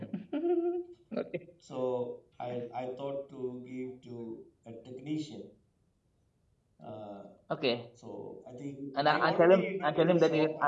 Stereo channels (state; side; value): identical; both; correlation 1.00